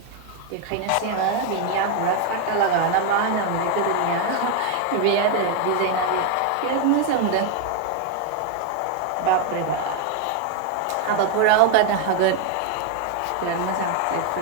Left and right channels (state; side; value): different; both; correlation 0.01